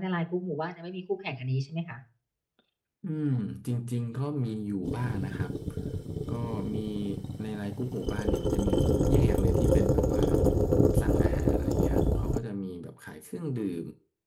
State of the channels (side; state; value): both; identical; correlation 1.00